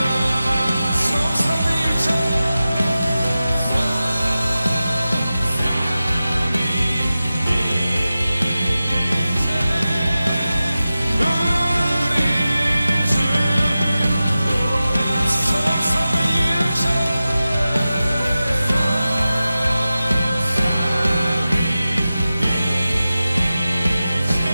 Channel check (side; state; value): both; inverted; correlation -0.94